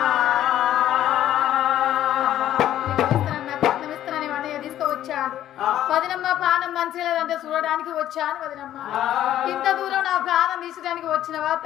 ఇస్తానని అన్నయ్య తీసుకువచ్చాడు. వదినమ్మ ప్రాణం మంచిగా లేదంటే చూడడానికి వచ్చాను. వదినమ్మ ఇంత దూరం నా ప్రాణం తీసడానికి వచ్చినవా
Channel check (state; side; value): quieter; right; 12.2 dB